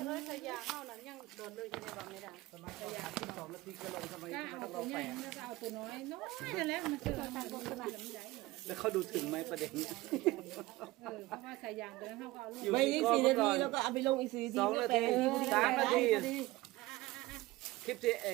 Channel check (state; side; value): quieter; left; 19.2 dB